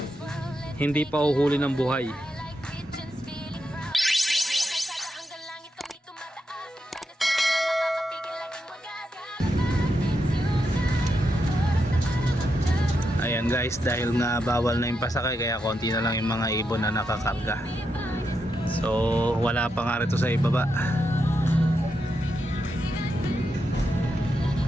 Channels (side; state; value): both; normal; correlation 0.84